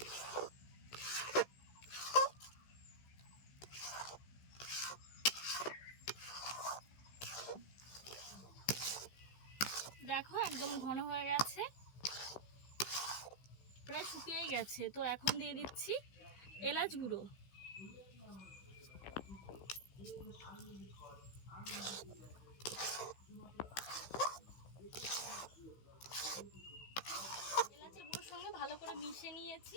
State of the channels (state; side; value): late; right; 16 ms